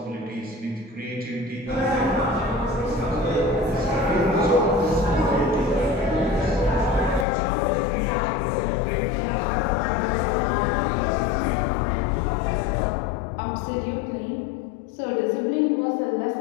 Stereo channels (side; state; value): right; drops out; at 7.2 s